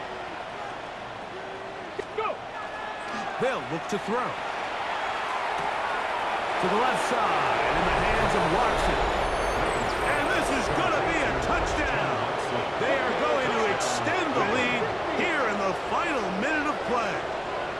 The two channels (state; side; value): identical; both; correlation 1.00